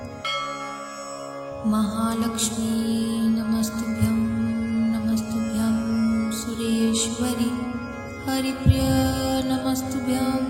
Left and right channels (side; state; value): both; identical; correlation 1.00